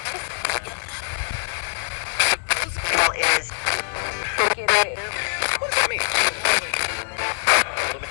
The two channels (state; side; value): silent; right; digital silence